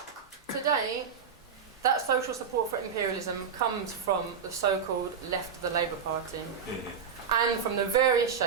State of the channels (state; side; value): quieter; left; 6.7 dB